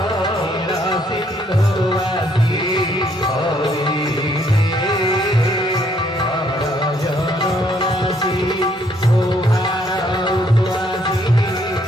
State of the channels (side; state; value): both; normal; correlation 0.68